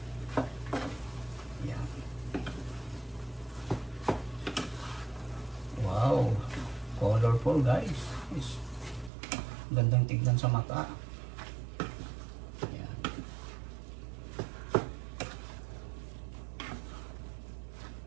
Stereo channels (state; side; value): drops out; left; at 9.1 s